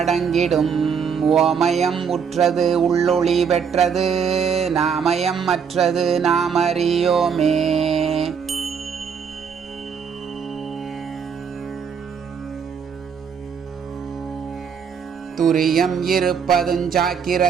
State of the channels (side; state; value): left; quieter; 6.7 dB